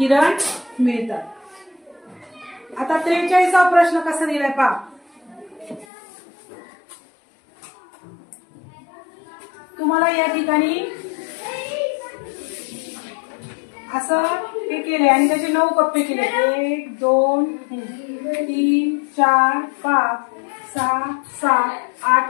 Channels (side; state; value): right; drops out; at 5.9 s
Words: मिळतात. आता 43वा प्रश्न कसा दिलाय पहा. तुम्हाला या ठिकाणी असं हे केले आणि त्याचे 9 कप्पे केले. 1 2 3 4 5 6 7 8